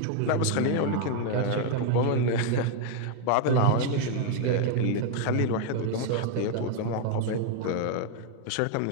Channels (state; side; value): different; both; correlation 0.00